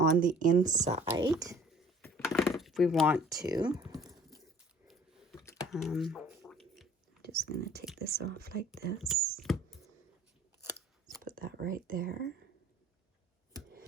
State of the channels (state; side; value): normal; both; correlation 0.52